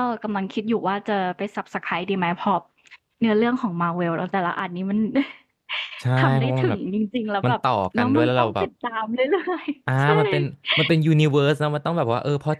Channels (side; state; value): both; identical; correlation 1.00